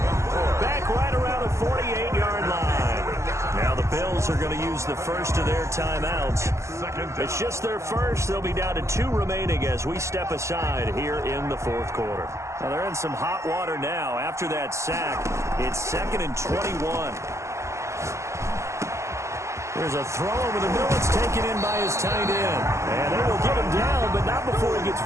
Back right around the 48-yard line. Now the Bills are going to use the first of their timeouts. It's just their first. They'll be down to 2 remaining as we step aside here in the fourth quarter. Now they're in some hot water now. After that sack, it's 2nd and 21. There's a throw over the middle. It's taken in by his tight end. And they will get him down, but not before he gets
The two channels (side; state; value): left; late; 0.14 ms